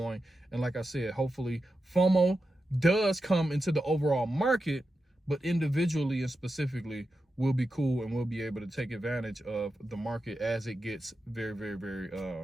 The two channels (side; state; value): both; normal; correlation 0.90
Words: And like I said, hopefully FOMO does come into the overall market, but individually and specifically, we'll be cool and we'll be able to take advantage of the market as it gets very, very, very